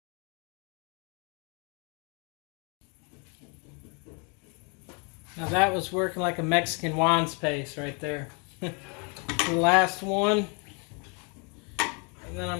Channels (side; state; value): right; quieter; 34.2 dB